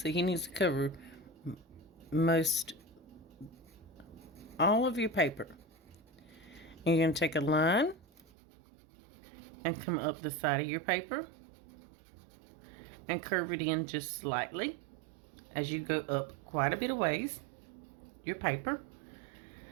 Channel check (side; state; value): left; drops out; at 8.2 s